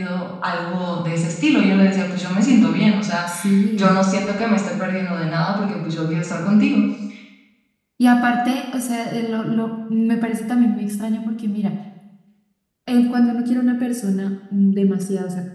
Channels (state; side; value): identical; both; correlation 1.00